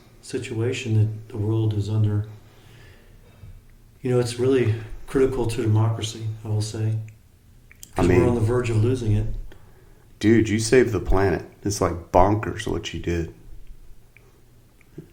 situation that the world is under. You know, it's really critical to democracy, I will say. Because we're on the verge of losing it. Dude, you saved the planet. It's like bonkers what you did.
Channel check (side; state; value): both; identical; correlation 1.00